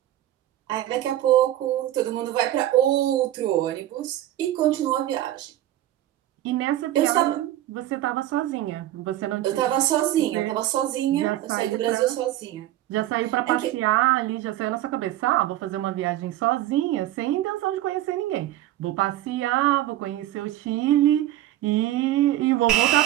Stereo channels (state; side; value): quieter; left; 13.9 dB